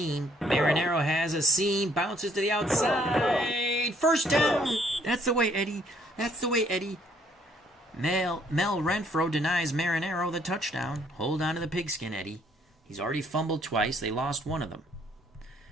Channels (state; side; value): normal; both; correlation 0.65